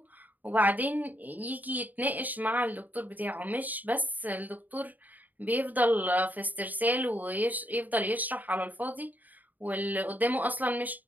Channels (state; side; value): late; left; 0.082 ms